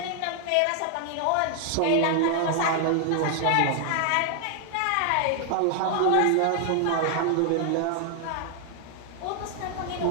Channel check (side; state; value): both; different; correlation 0.00